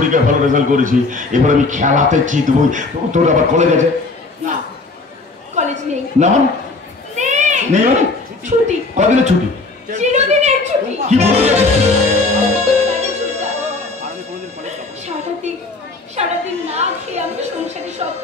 ভালো রেজাল্ট করেছি, এবার আমি খেলাতে জিতবই। তোর আবার কলেজ আছে না? কলেজ নেই। না মানে নেই মানে ছুটি। কদিনের ছুটি? চিরদিনের ছুটি। কি বলছিস? সারাদিন না খেয়ে আমি সংসারে সব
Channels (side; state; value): right; quieter; 3.5 dB